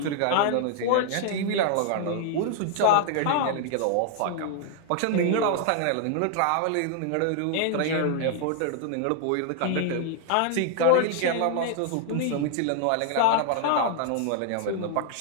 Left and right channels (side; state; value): both; different; correlation 0.00